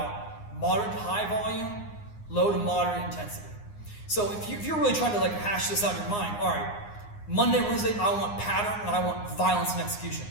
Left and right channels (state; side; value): late; right; 9.7 ms